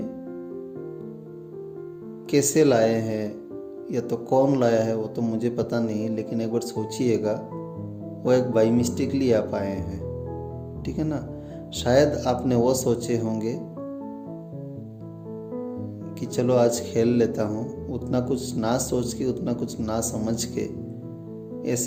कैसे लाए हैं या तो कौन लाया है वो तो मुझे पता नहीं, लेकिन एक बार सोचिएगा, वो एक बाई मिस्टेकली आप आए हैं, ठीक है ना। शायद आपने वो सोचे होंगे कि चलो आज खेल लेता हूँ, उतना कुछ ना सोच के, उतना कुछ ना समझ के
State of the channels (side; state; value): both; identical; correlation 1.00